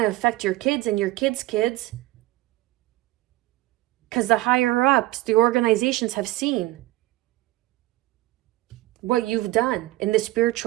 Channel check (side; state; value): left; quieter; 18.4 dB